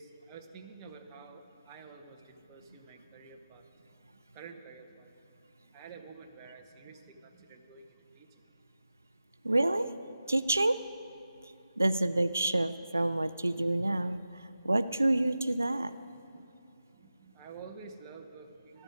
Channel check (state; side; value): inverted; both; correlation -0.94